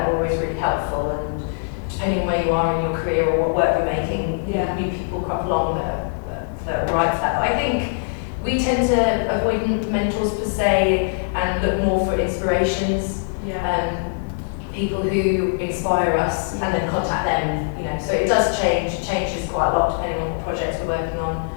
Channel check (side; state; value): right; silent; digital silence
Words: are always really helpful, and depending on where you are in your career or what work you're making, new people crop along that are right for that. But I think we tend to avoid mentors per se and look more for inspirations, people who inspire us, and then contact them. So it does change. It changes quite a lot depending on what projects we're working on.